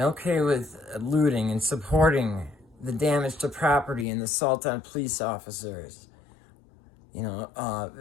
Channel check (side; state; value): right; drops out; at 4.0 s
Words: okay with looting and supporting the damage to property and the assault on police officers,